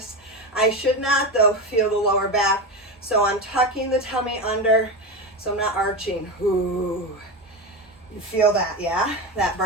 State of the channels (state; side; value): normal; both; correlation 0.18